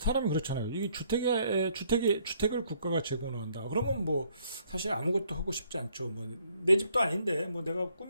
그렇잖아요. 이게 주택을 국가가 제공을 한다. 그러면 뭐, 사실 아무것도 하고 싶지 않죠. 뭐, 내 집도 아닌데, 뭐, 내가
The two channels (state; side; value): inverted; both; correlation -0.67